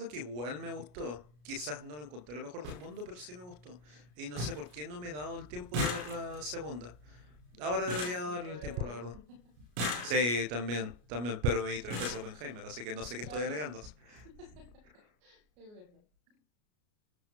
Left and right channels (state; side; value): late; left; 33 ms